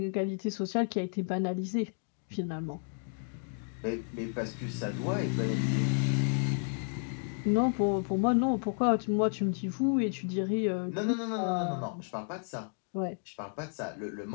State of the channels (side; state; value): right; silent; 56 dB below the other